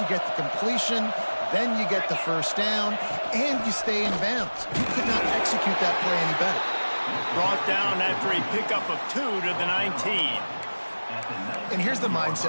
you get the completion, then you get the first down, and you stay in bounds. You could not execute that play any better. Brought down after a pickup of 2 to the 19. And here's the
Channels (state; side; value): inverted; both; correlation -1.00